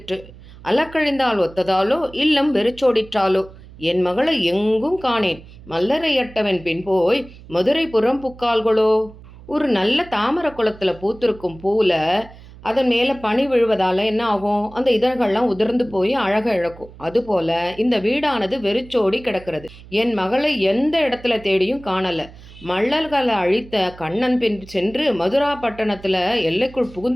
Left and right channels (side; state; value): right; noise; hum, 20 dB below the sound